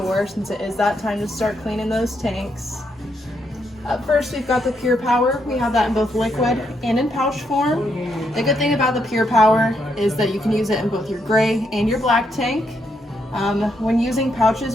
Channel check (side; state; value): both; normal; correlation 0.78